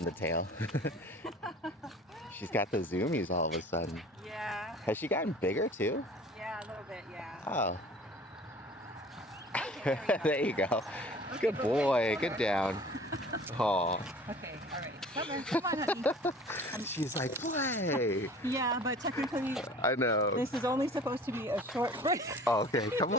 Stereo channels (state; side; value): normal; both; correlation 0.46